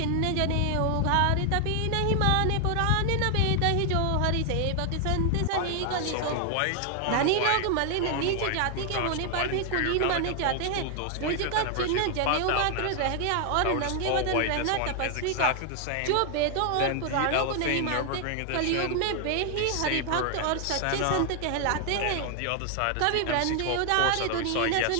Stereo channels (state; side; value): different; both; correlation 0.00